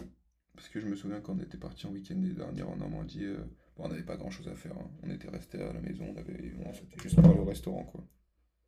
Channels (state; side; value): identical; both; correlation 1.00